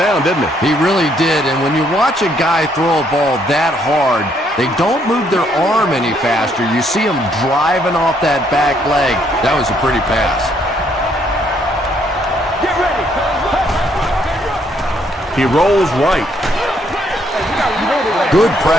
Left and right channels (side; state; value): both; normal; correlation 0.70